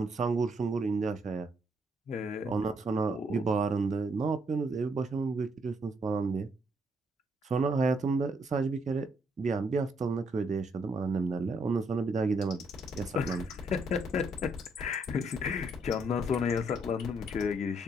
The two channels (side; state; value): both; normal; correlation 0.72